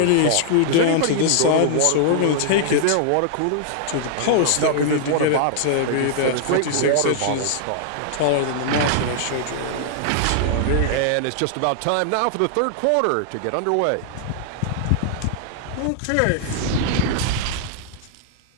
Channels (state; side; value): different; both; correlation -0.01